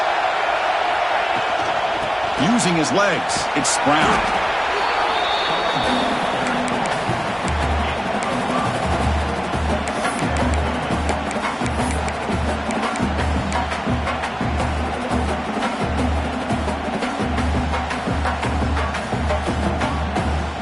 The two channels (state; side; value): identical; both; correlation 1.00